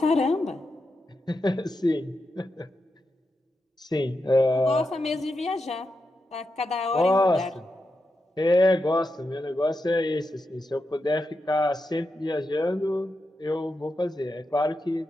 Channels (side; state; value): both; normal; correlation 0.87